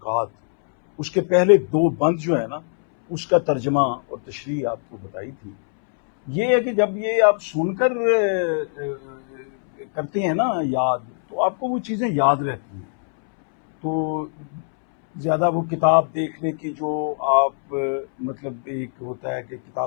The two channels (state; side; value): silent; right; 64 dB below the other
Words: اس کے پہلے دو بند جو ہے نا، اس کا ترجمہ اور تشریح آپ کو بتائی تھی۔ یہ ہے کہ جب یہ آپ سن کر کرتے ہیں نا یاد، تو آپ کو وہ چیزیں یاد رہتی ہیں۔ تو زیادہ وہ کتاب دیکھنے کی جو آپ مطلب ایک ہوتا ہے کہ